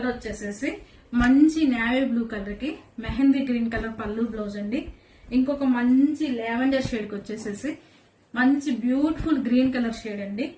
వచ్చేసేసి మంచి నేవీ బ్లూ కలర్ కి మెహందీ గ్రీన్ కలర్ పళ్ళు బ్లౌజ్ అండి. ఇంకొక మంచి లావెండర్ షేడ్ కి వచ్చేసేసి మంచి బ్యూటిఫుల్ గ్రీన్ కలర్ షేడ్ అండి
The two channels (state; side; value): identical; both; correlation 1.00